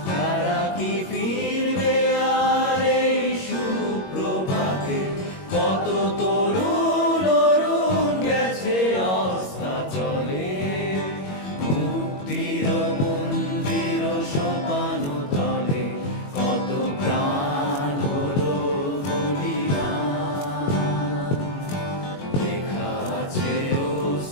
তারা কি ফিরবে আর এই সুপ্রভাতে? কত তরুণ অরুণ গেছে অস্তাচলে, মুক্তির মন্দির সোপান তলে। কত প্রাণ হলো বলিদান, লেখা আছে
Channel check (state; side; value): late; right; 21 ms